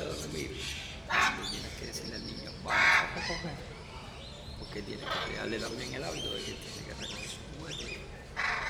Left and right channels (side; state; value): both; identical; correlation 1.00